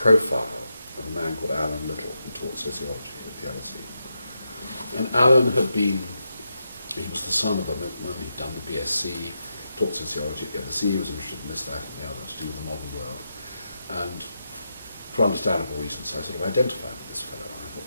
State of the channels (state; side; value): inverted; both; correlation -0.85